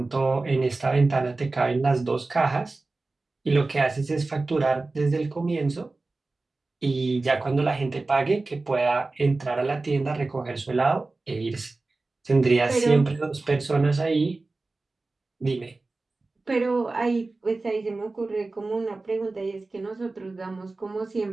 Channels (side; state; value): left; quieter; 3.4 dB